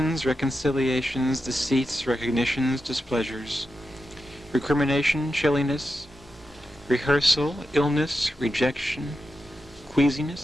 reconciliations, deceits, recognitions, displeasures, recrimination, chilliness, rehearsal, illness, rejection,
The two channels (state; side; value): normal; both; correlation 0.89